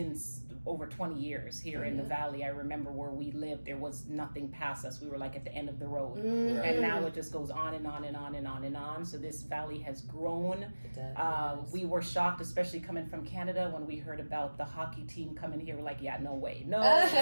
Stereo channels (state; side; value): inverted; both; correlation -1.00